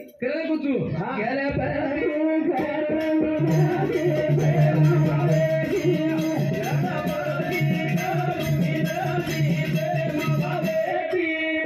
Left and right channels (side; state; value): both; identical; correlation 1.00